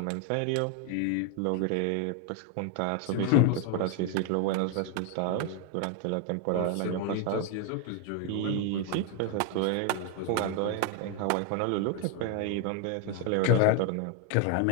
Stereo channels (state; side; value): different; both; correlation 0.01